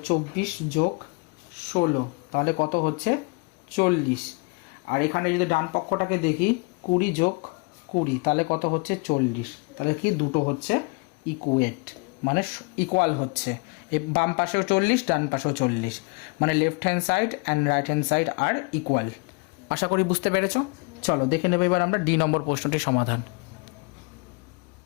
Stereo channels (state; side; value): quieter; right; 30.7 dB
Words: 24 + 16, তাহলে কত হচ্ছে 40। আর এখানে যদি ডান পক্ষটাকে দেখি 20 + 20, তাহলে কত হচ্ছে 40। তাহলে কি দুটো হচ্ছে ইকুয়েট, মানে ইকুয়াল হচ্ছে, এই বাম পাশেও 40 ডান পাশেও 40, মানে left hand side and right hand side আর ইকুয়াল। আশা করি বুঝতে পেরেছো। চলো দেখে নেব এবার আমরা ডি নম্বর প্রশ্নটির সমাধান।